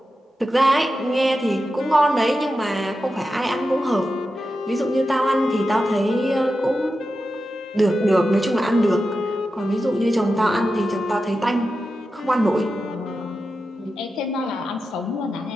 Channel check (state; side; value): normal; both; correlation 0.91